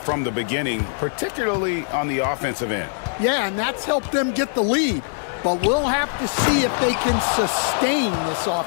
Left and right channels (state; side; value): silent; right; digital silence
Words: the beginning, particularly on the offensive end. Yeah, and that's helped them get the lead. but we'll have to see if they can sustain this